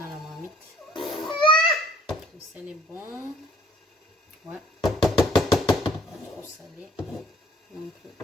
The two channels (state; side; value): normal; both; correlation 0.58